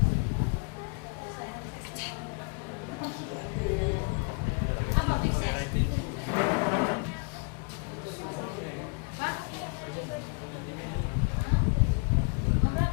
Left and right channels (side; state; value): right; quieter; 33.5 dB